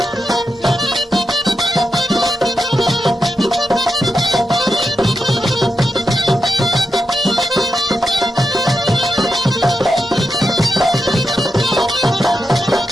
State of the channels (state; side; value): normal; both; correlation 0.87